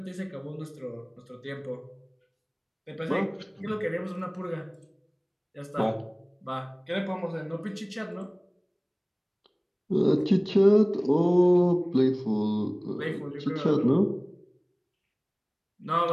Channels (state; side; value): identical; both; correlation 1.00